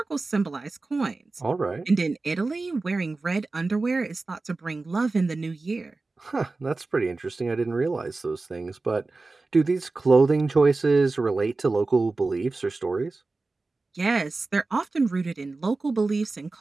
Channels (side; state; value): left; quieter; 3.6 dB